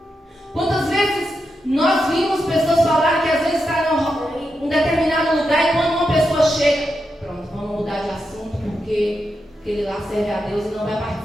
Quantas vezes nós vimos pessoas falar que às vezes está em um determinado lugar e quando uma pessoa chega, pronto, vamos mudar de assunto porque ele lá serve a Deus e não vai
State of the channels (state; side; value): normal; both; correlation 0.86